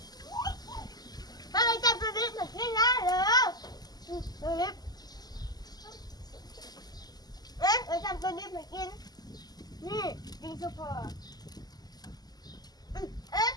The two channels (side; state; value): right; late; 0.20 ms